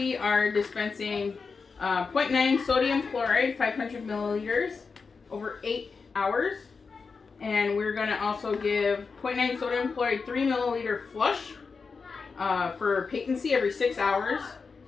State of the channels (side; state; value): right; quieter; 4.9 dB